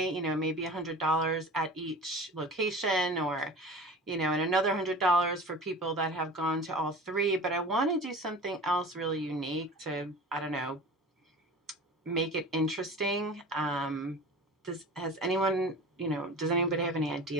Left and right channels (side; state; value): both; normal; correlation 0.37